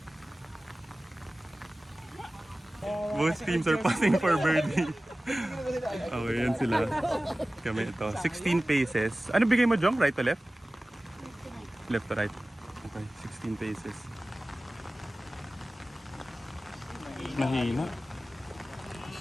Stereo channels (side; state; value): both; normal; correlation 0.97